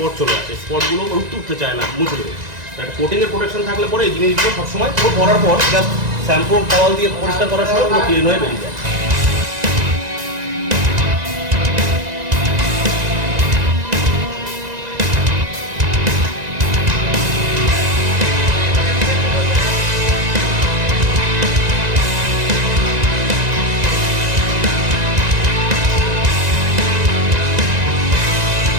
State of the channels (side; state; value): left; late; 1.9 ms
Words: চলে আসে, স্পটগুলো উঠতে চায় না, মুছে দেবে। একটা কোটিংয়ের প্রোটেকশন থাকলে পরে এই জিনিসগুলো সবসময় পুরো ভরার পর জাস্ট শ্যাম্পু টাওয়াল দিয়ে পরিষ্কার করার সময় পুরো ক্লিন হয়ে বেরিয়ে যায়।